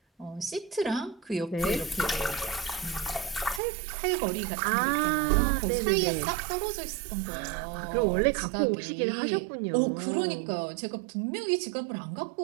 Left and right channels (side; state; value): left; drops out; at 3.6 s